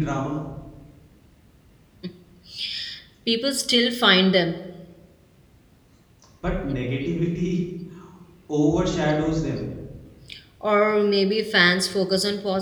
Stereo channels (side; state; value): both; identical; correlation 1.00